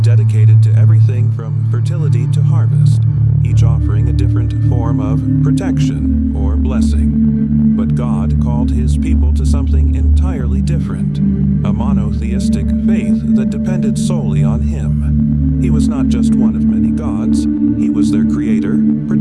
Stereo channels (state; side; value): noise; left; hum, 26 dB below the sound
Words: dedicated to everything from fertility to harvest, each offering a different form of protection or blessing. But God called His people to something entirely different, a monotheistic faith that depended solely on Him. He was not just one of many gods, He was their creator,